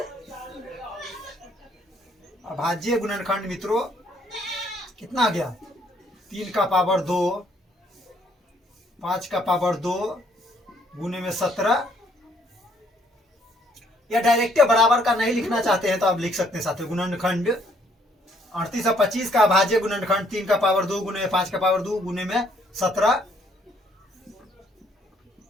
अभाज्य गुणनखंड मित्रों कितना आ गया? 3 का पावर 2, 5 का पावर 2 गुने में 17। या डायरेक्ट बराबर का नहीं लिखना चाहते हैं तो आप लिख सकते हैं साथियों गुणनखंड 38 और 25 का अभाज्य गुणनखंड 3 का पावर 2 गुने में 5 का पावर 2 गुने में 17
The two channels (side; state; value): both; normal; correlation 0.66